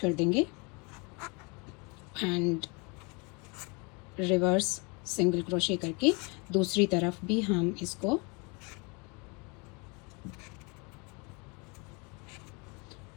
कर देंगे एंड रिवर्स सिंगल क्रोशे करके दूसरी तरफ भी हम इसको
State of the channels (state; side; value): quieter; right; 30.5 dB